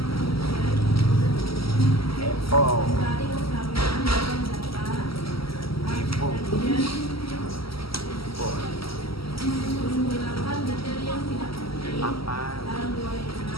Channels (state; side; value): late; right; 0.75 ms